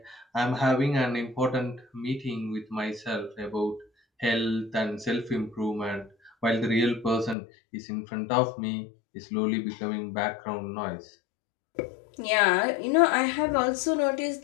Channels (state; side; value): drops out; right; at 7.4 s